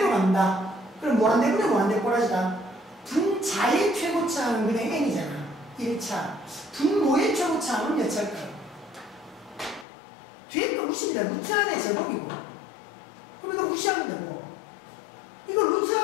간다. 그럼 무한대분의 무한대 꼬라지다. 분자의 최고차항은 그냥 n이잖아. 1차. 분모의 최고차항은 몇 차일까요? 뒤에 거 무시입니다. 루트 안에 제곱이고. 그럼 이거 무시하면 되고. 이거 루트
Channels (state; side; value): drops out; right; at 9.9 s